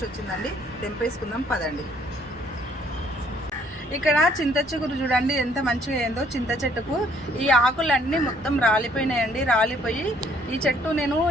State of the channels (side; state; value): both; normal; correlation 0.63